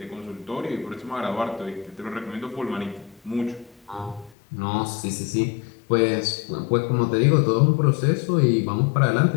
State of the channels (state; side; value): drops out; right; at 4.4 s